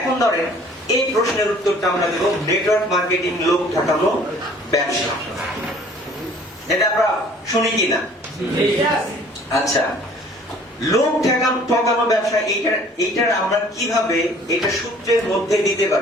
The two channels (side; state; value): both; normal; correlation 0.53